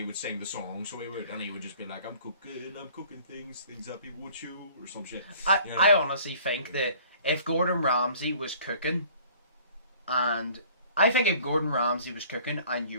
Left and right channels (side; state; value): both; inverted; correlation -0.52